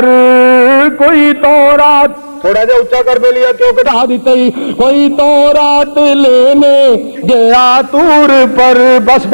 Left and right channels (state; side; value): inverted; both; correlation -1.00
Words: کوئی تو رات، تھوڑا جا اونچا کر دے لیا کیوں کٹا دیتے ہی، کوئی تو رات لینے گیا طور پر، بس